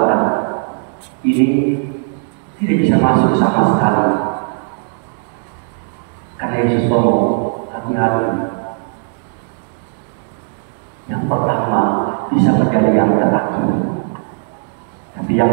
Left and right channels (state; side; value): silent; left; 56 dB below the other